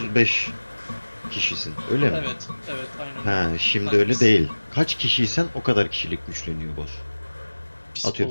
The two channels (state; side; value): inverted; both; correlation -1.00